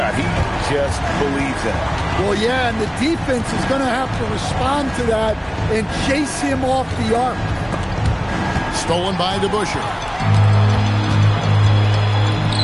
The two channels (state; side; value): identical; both; correlation 1.00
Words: He just believes in it. Well, yeah, and the defense is going to have to respond to that and chase him off the arc. Stolen by DeBusschere.